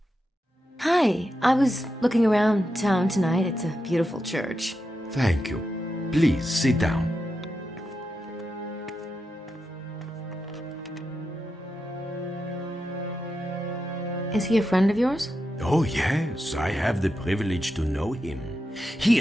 Hi, I was looking around town tonight. It's a beautiful church. Thank you. Please sit down. Is he a friend of yours? Oh, yes, I have the privilege to know him. He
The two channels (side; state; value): both; normal; correlation 0.87